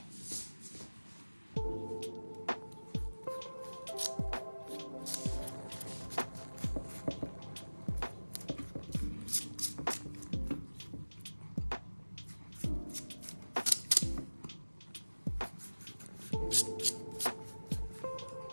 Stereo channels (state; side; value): inverted; both; correlation -1.00